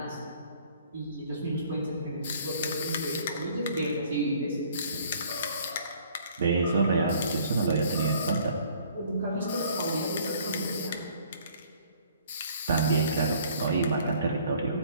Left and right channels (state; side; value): inverted; both; correlation -0.57